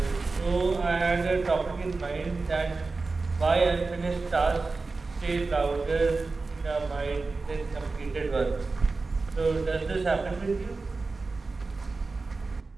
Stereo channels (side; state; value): left; quieter; 3.8 dB